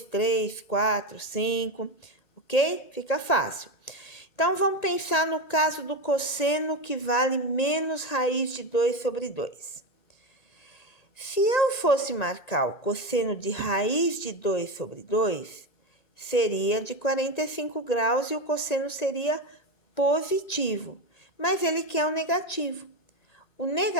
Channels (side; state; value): right; late; 1.9 ms